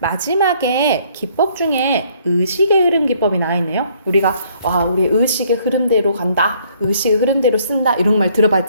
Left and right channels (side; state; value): both; inverted; correlation -0.64